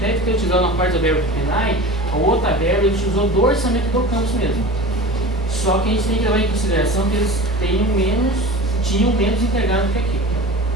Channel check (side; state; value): both; normal; correlation 0.35